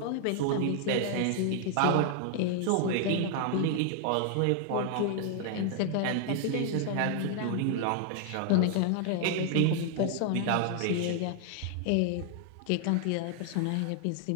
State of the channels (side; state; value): both; different; correlation 0.00